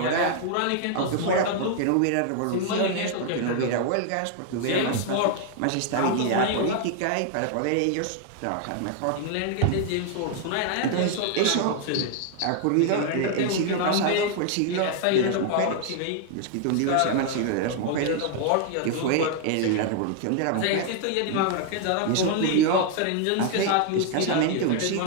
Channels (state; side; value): different; both; correlation 0.00